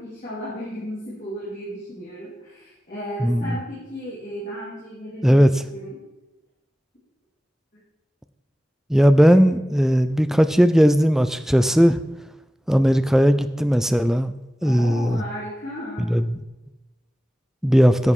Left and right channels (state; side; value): normal; both; correlation 0.96